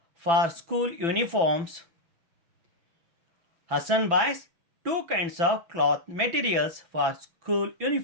for school uniforms. Hassan buys two kinds of cloth materials for school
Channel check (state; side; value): late; left; 6.0 ms